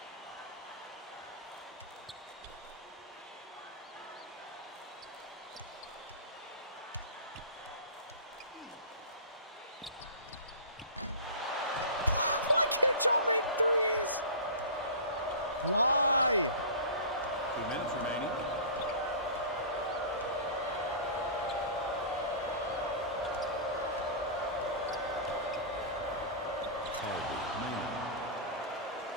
Why can't y'all make threes? Why? 2 minutes remaining.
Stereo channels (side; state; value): both; inverted; correlation -0.35